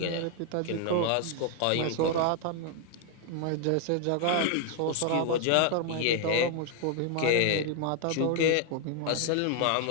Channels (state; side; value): different; both; correlation 0.00